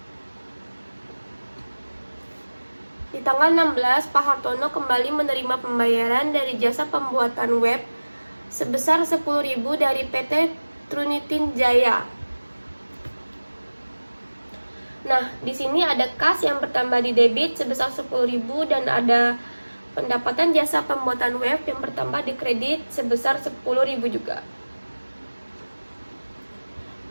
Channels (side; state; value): both; inverted; correlation -1.00